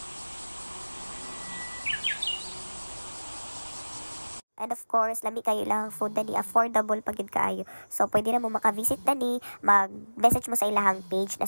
And of course, lami kayo lang food na ni affordable pag yun kaayo. So, pwede na mo makavisit na ni, mag-message mo sa ilahang page, na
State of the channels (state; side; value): inverted; both; correlation -1.00